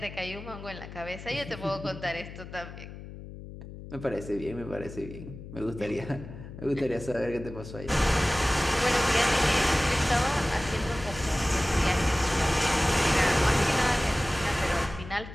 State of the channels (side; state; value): left; noise; hum, 13 dB below the sound